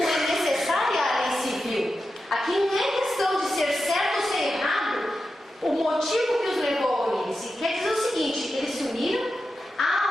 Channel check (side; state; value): both; normal; correlation 0.90